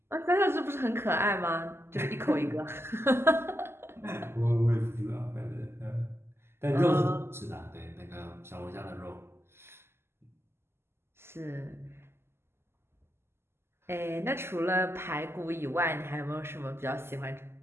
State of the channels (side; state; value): left; late; 0.12 ms